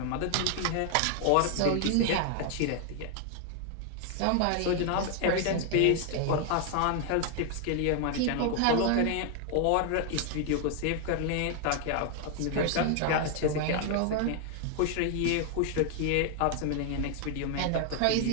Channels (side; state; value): both; different; correlation 0.00